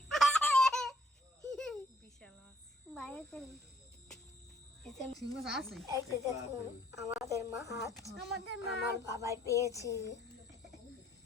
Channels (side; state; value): both; normal; correlation 0.64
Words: বিশাল মাছ বাইরে চলে এই যে সিংহ আছে এই যে দেখুন আমাদের মাছ আমাদের মা আমার বাবাই পেয়েছে